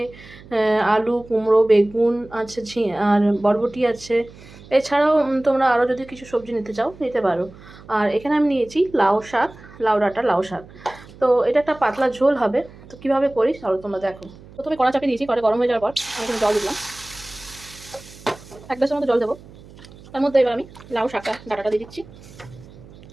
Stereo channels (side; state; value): right; noise; hum, 20 dB below the sound